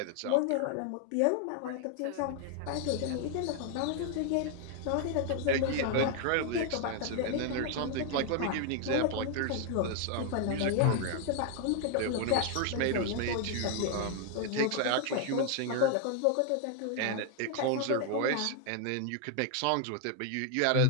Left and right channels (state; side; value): different; both; correlation 0.00